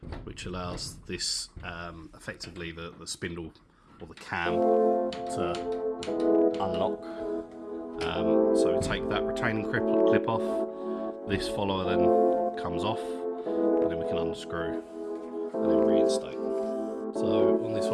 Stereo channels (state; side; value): identical; both; correlation 1.00